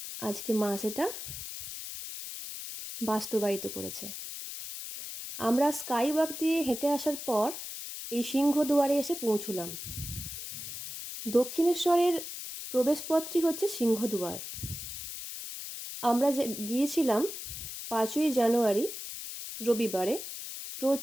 আজকে মা সেটা বাস্তবায়িত করেছে। আমরা স্কাইওয়াক দিয়ে হেঁটে আসার পর এই সিংহদুয়ারে এসে পৌঁছলাম। দক্ষিণেশ্বরের প্রবেশপথটি হচ্ছে সিংহদুয়ার। আমরা যে গিয়েছিলাম 5ই জানুয়ারি রবিবারে,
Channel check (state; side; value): noise; left; hiss, 8 dB below the sound